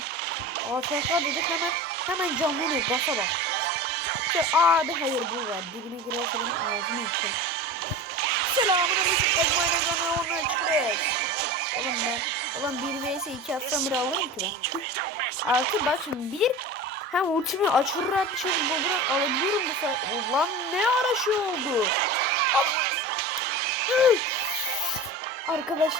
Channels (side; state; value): both; normal; correlation 0.31